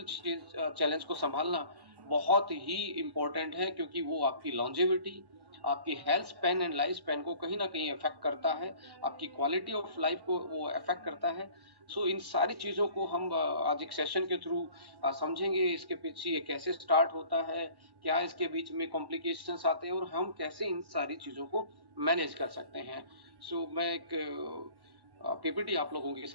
चैलेंज को संभालना बहुत ही इम्पोर्टेंट है, क्योंकि वो आपकी लॉन्जेविटी, आपकी health span and life span को कहीं ना कहीं अफेक्ट करता है, आपकी क्वालिटी ऑफ लाइफ को वो अफेक्ट करता है। सो इन सारी चीजों को हम आज एक सेशन के थ्रू समझेंगे, इसके पीछे ये कैसे स्टार्ट होता है, क्या इसके बीच में कॉम्प्लिकेशंस आते हैं, और हम कैसे इन सारी चीजों को मैनेज कर सकते हैं। सो मैं एक पीपीटी आप लोगों के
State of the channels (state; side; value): late; left; 1.1 ms